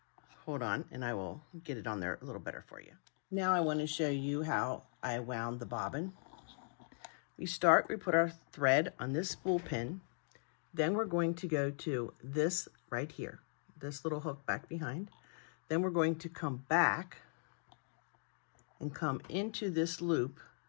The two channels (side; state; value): right; silent; digital silence